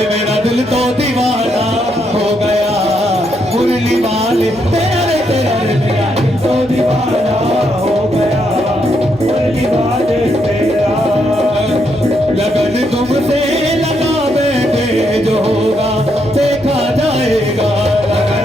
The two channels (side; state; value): right; noise; hum, 22 dB below the sound